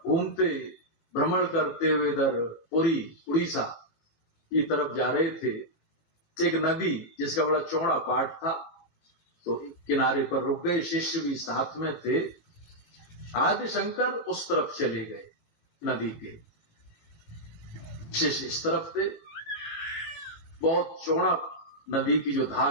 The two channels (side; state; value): right; late; 18 ms